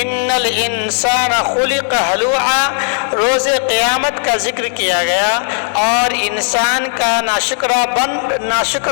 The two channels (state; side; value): silent; right; 66 dB below the other